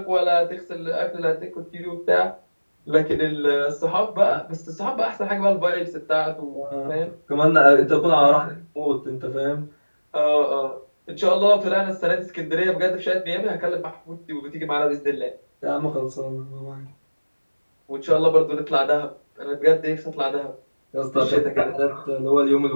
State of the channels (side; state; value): both; inverted; correlation -1.00